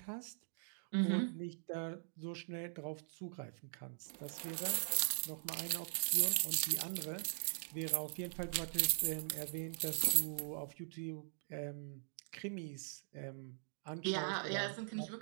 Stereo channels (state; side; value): silent; left; digital silence